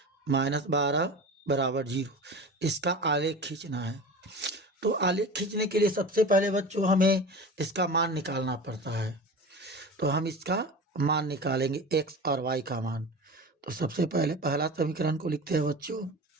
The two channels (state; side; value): normal; both; correlation 0.32